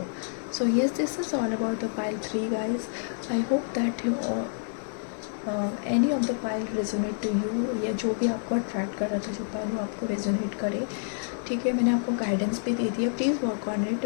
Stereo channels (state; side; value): silent; right; digital silence